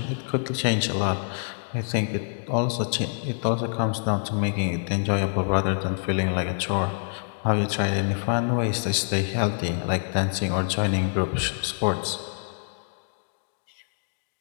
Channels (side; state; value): right; silent; digital silence